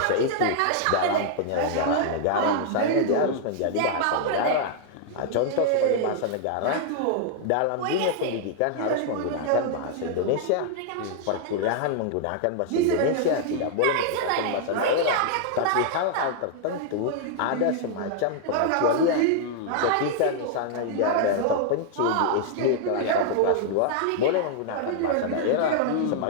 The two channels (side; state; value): both; different; correlation -0.01